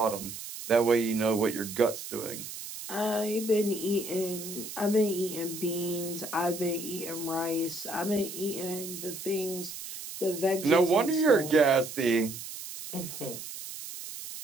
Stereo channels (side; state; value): right; noise; hiss, 10 dB below the sound